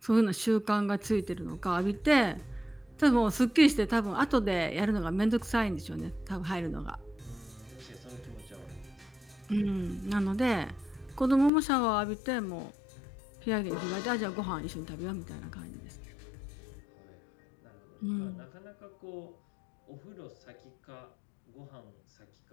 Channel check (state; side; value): drops out; right; at 11.5 s